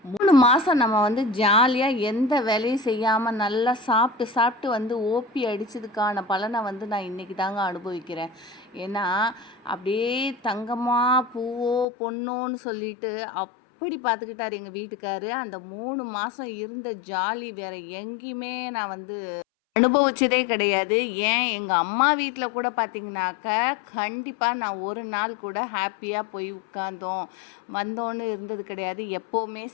3 மாதம் நம்ம வந்து ஜாலியாக எந்த வேலையும் செய்யாமல் நல்லா சாப்பிட்டு சாப்பிட்டு வந்து ஓபி அடித்ததுக்கான பலனை வந்து நான் இன்றைக்கி தாங்க அனுபவிக்கிறேன். ஏன்னா அப்படியே தங்கமா பூவோ பொண்ணோன்னு சொல்லிட்டு அப்படி பார்த்துக்கிட்டார் எங்கள் வீட்டுக்காரு. அந்த 3 மாதம் இருந்த ஜாலி வேறு எங்கேயுமே நான் வந்து அனுபவிச்சதே கிடையாது. ஏன் எங்கள் அம்மா வீட்டில் கூட பார்த்தீங்கன்னாக்கா, கண்டிப்பாக நான் ஒரு நாள் கூட ஹாப்பியாக போய் உட்கார்ந்தோம், வந்தோன்னு இருந்தது கிடையாது. எப்போவுமே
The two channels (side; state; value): right; drops out; at 11.9 s